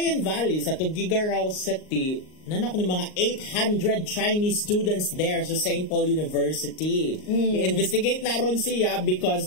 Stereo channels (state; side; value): late; right; 38 ms